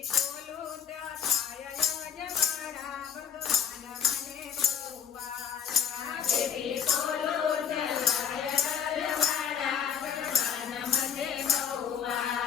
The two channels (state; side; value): quieter; right; 7.9 dB